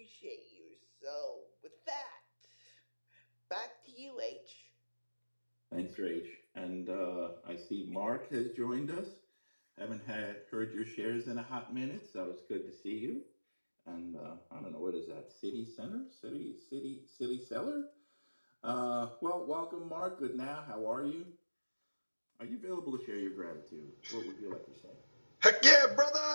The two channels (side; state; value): both; inverted; correlation -1.00